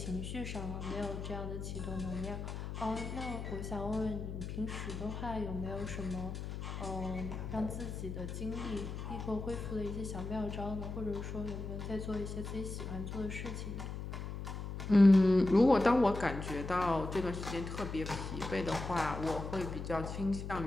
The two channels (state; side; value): noise; left; hum, 6 dB below the sound